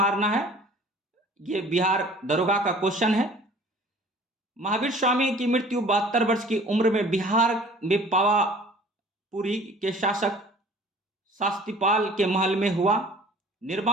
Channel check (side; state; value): both; normal; correlation 0.49